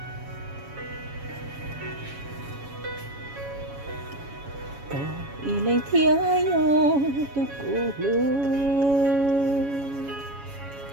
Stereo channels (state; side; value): late; left; 7.2 ms